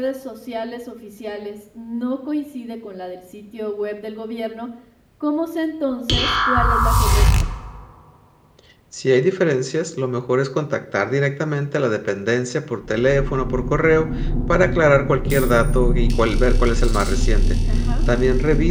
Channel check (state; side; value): identical; both; correlation 1.00